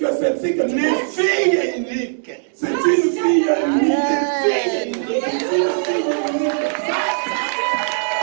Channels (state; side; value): silent; left; digital silence